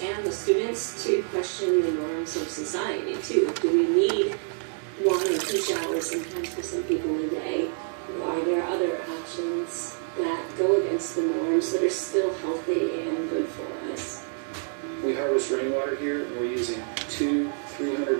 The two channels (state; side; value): silent; left; 59 dB below the other